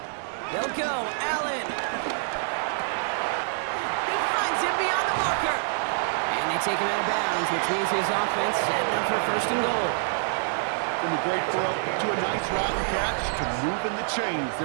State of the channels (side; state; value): left; silent; 59 dB below the other